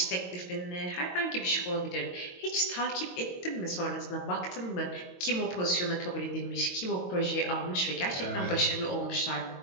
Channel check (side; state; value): right; late; 22 ms